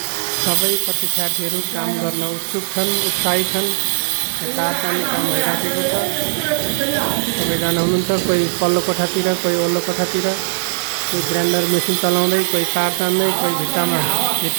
सबै परीक्षार्थीहरू काम गर्न उत्सुक छन्, उत्साही छन्। तार तान्ने काम भइराखेको छ। सबैजना हुनुहुन्छ, कोही पल्लो कोठातिर, कोही वल्लो कोठातिर, कोही ग्राइन्डर मेसिन चलाउँदै, कोही तार तान्दै, कोही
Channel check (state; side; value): silent; left; digital silence